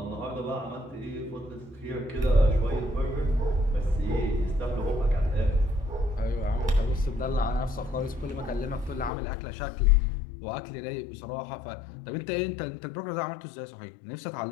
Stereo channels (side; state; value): right; drops out; at 9.1 s